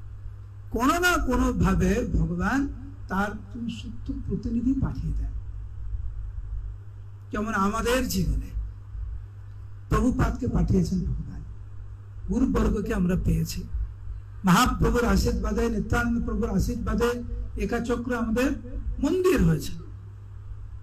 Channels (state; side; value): identical; both; correlation 1.00